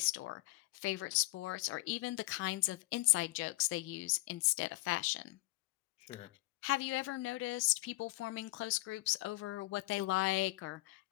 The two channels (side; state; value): right; quieter; 20.8 dB